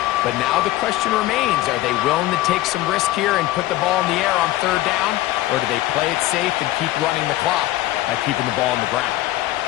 But now the question remains, are they willing to take some risk here and put the ball in the air on 3rd down? Or do they play it safe and keep running the clock by keeping the ball on the ground?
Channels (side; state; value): right; quieter; 16.4 dB